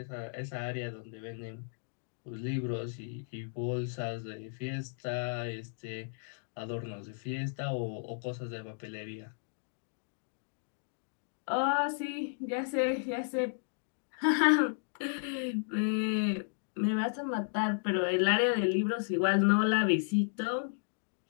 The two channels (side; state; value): right; silent; digital silence